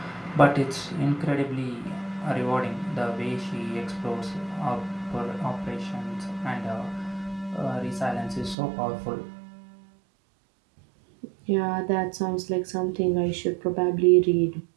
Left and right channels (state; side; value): drops out; left; at 8.6 s